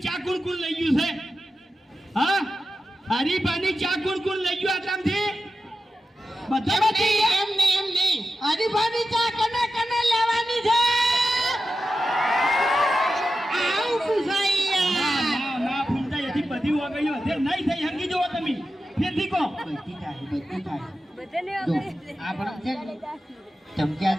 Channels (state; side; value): normal; both; correlation 0.91